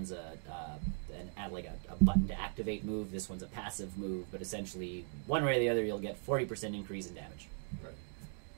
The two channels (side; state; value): left; silent; 52 dB below the other